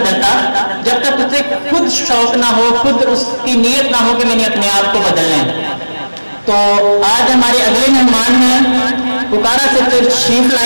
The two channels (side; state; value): both; inverted; correlation -1.00